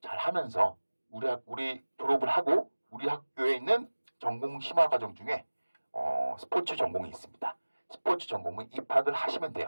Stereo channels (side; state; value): both; inverted; correlation -1.00